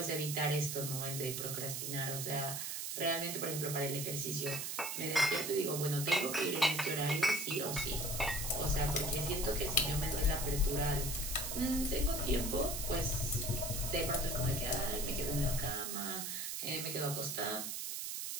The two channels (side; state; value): right; noise; hiss, 3 dB below the sound